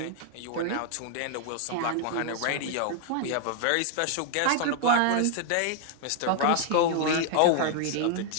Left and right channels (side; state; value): both; different; correlation 0.00